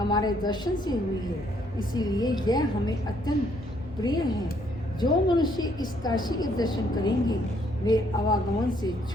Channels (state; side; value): normal; both; correlation 0.68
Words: दर्शन से हुई है, इसीलिए यह हमें अत्यंत प्रिय है। जो मनुष्य इस काशी के दर्शन करेंगे, वे आवागमन से